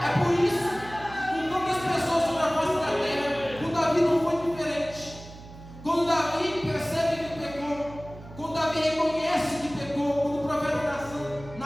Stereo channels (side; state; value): right; noise; hum, 17 dB below the sound